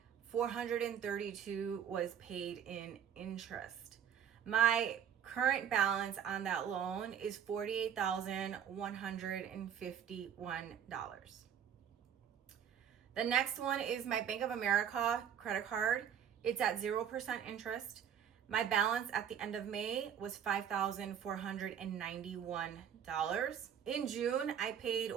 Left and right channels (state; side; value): quieter; left; 8.6 dB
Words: $432 was paid in interest. My current balance on that loan is $48,151. The next one is my Bank of America credit card. It's at 0% interest. My balance at the end of May was $5,491. In June, I paid